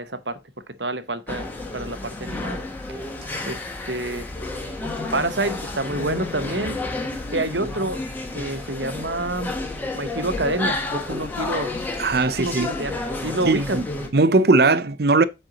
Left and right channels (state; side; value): normal; both; correlation 0.22